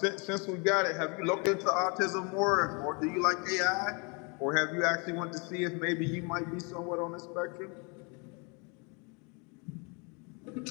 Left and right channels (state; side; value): quieter; right; 32.9 dB